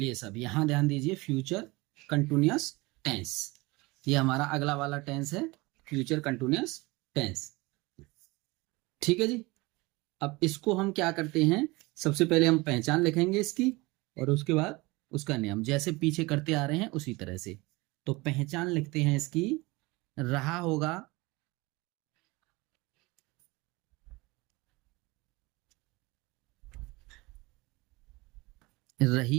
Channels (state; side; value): quieter; left; 23.2 dB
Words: सब यहां ध्यान दीजिए, फ्यूचर कंटिन्यूअस टेंस, ये हमारा अगला वाला टेंस है, फ्यूचर कंटिन्यूअस टेंस। ठीक है जी। अब इसको हम क्या करते हैं, सबसे पहले हम पहचान लिखेंगे इसकी, और उसके बाद उसका नियम, जैसे पीछे करते आ रहे हैं उसी तरह से। तो पहचान लिखते हैं इसकी, रहा होगा,